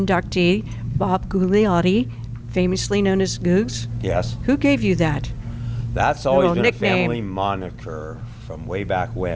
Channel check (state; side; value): identical; both; correlation 1.00